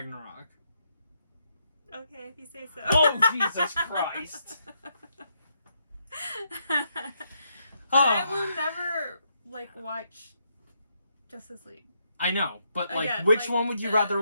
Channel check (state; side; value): inverted; both; correlation -0.78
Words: Okay, if you say so. Oh, Jesus Christ. I will never, like, watch Justice League. I know, but, like, Again, which like, one would you rather